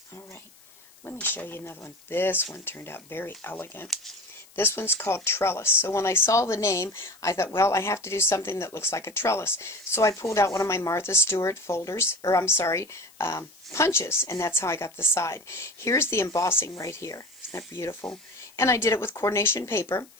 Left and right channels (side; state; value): left; noise; hiss, 26 dB below the sound